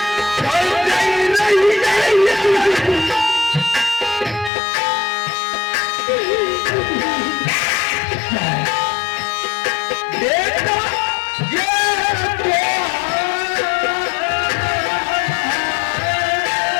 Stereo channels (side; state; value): right; drops out; at 4.5 s